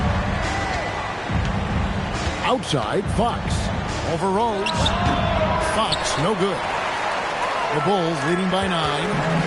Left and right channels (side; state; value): both; identical; correlation 1.00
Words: Outside, Fox. Over Rose. Fox, no good. The Bulls leading by 9.